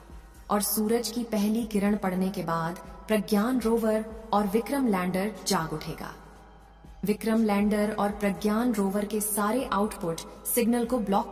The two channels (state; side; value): identical; both; correlation 1.00